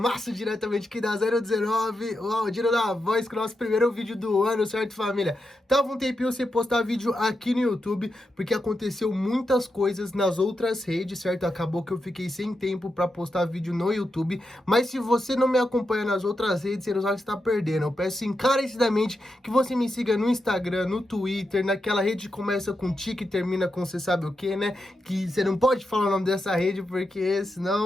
diretamente aqui da 019, o Aldino da Voz, com o nosso primeiro vídeo do ano, certo, família? Tava um tempinho sem postar vídeo aqui no YouTube, porque aconteceu muitas coisas nas outras redes, certo? Acabou que eu fiquei sem tempo pra postar vídeo no YouTube, mas se você não me acompanha nas outras redes, você não sabe o que está perdendo. Eu peço encarecidamente que você me siga no Instagram, no Twitter, naquela rede que começa com tique e termina com você sabe o que, né? Que você não pode falar o nome dessa rede, porque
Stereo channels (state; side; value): normal; both; correlation 0.86